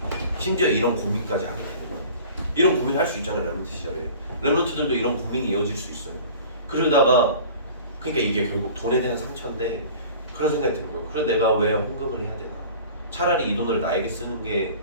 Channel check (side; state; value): both; inverted; correlation -0.43